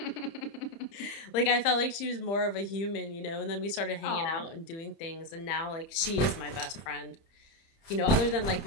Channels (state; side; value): late; right; 30 ms